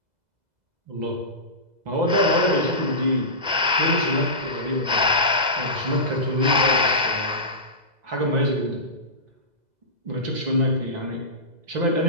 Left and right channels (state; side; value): late; left; 2.0 ms